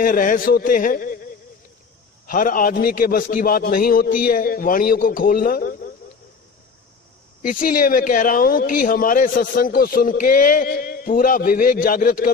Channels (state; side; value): quieter; right; 5.0 dB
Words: रहस्य होते हैं। हर आदमी के बस की बात नहीं होती है वाणियों को खोलना। इसीलिए मैं कह रहा हूं कि हमारे सत्संग को सुन के पूरा विवेक जागृत